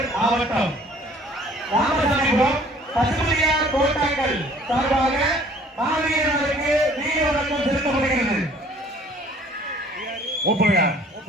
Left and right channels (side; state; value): both; normal; correlation 0.55